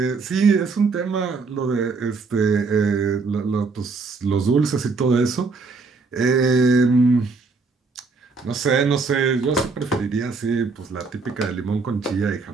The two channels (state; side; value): quieter; left; 4.3 dB